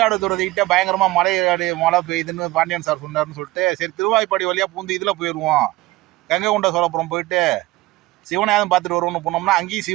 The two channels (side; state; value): left; quieter; 18.9 dB